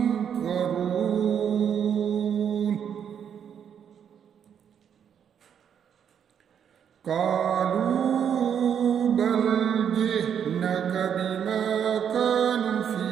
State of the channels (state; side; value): quieter; left; 8.3 dB